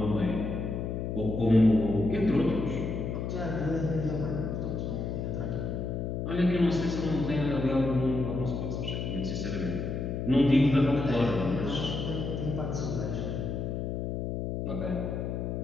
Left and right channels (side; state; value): left; noise; hum, 3 dB below the sound